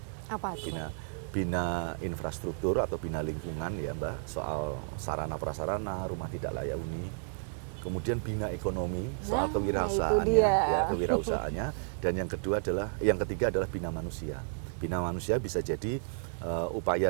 Apa itu? Bina infrastruktur atau bina lingkungan ya Mbak, soal sarana prasarana, rumah tidak layak huni. Kemudian bina ekonomi, soal kewirausahaannya, dan yang ketiga adalah bina manusia. Bina manusia bisa jadi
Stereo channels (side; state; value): left; silent; digital silence